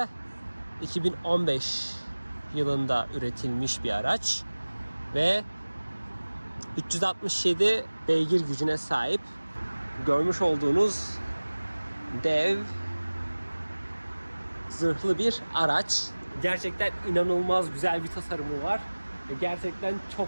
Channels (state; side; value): inverted; both; correlation -1.00